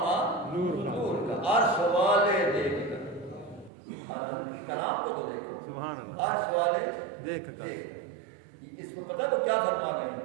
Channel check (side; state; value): left; drops out; at 3.7 s